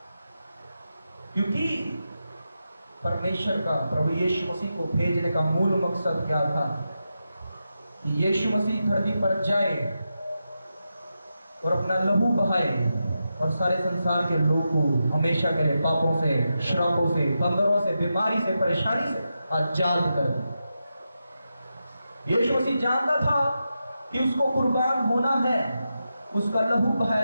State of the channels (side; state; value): both; inverted; correlation -0.88